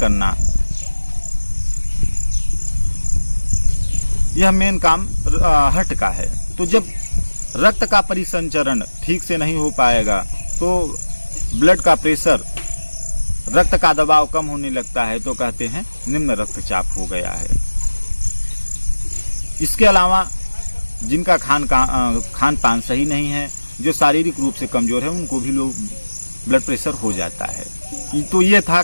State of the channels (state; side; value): inverted; both; correlation -1.00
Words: यह मेन काम हार्ट का है। तो जब रक्त का परिसंचरण ठीक से नहीं हो पाएगा तो ब्लड का प्रेशर, रक्त का दबाव कम होने लगता है, तो कहते हैं निम्न रक्तचाप हो गया है। इसके अलावा जिनका खान पान सही नहीं है, जो शारीरिक रूप से कमजोर है, उनको भी लो ब्लड प्रेशर हो जाता है। तो ये था